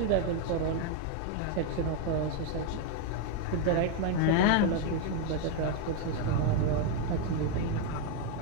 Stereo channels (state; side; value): different; both; correlation 0.01